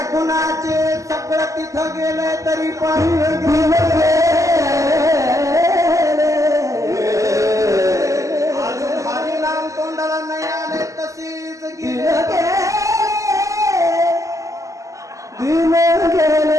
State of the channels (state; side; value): late; left; 0.16 ms